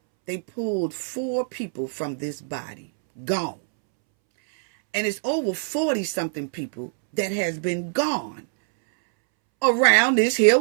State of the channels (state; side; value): silent; left; 63 dB below the other